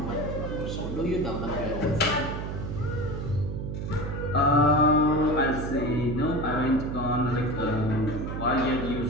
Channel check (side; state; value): right; noise; hum, 5 dB below the sound